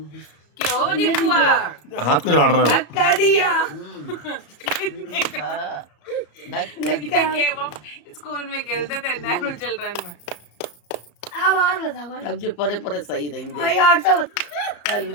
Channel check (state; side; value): late; right; 34 ms